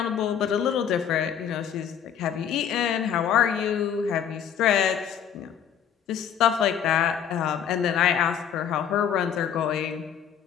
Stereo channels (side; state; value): right; quieter; 8.6 dB